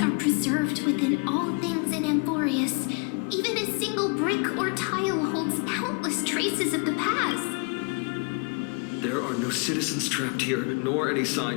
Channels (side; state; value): right; quieter; 34.5 dB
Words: preserved within all things in Amphoreus. Even a single brick or tile holds countless traces of the past. There are no citizens trapped here, nor any